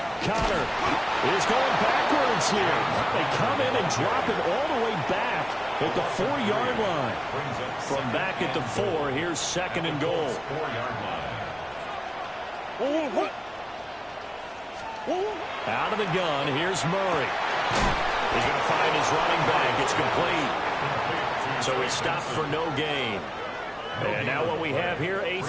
Connor is going backwards here. They come in and drop it all the way back at the 4-yard line. From back at the 4, here's 2nd and goal. Out of the gun, here's Murray. He's going to find his running back. It's complete. So he stopped for no gain. And now what we have here, a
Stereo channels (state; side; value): identical; both; correlation 1.00